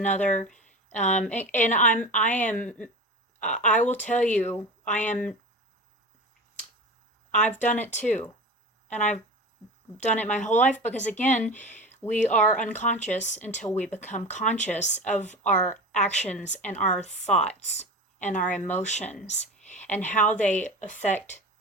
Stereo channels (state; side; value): normal; both; correlation 0.30